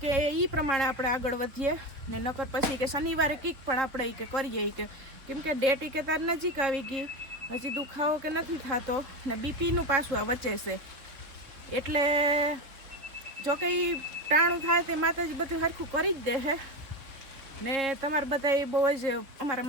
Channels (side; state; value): left; late; 4.0 ms